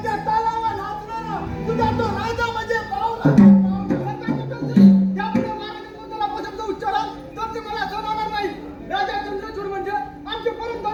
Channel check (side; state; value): both; identical; correlation 1.00